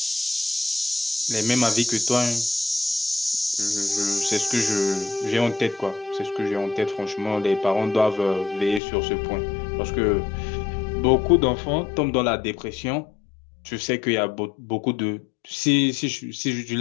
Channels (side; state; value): right; drops out; at 8.8 s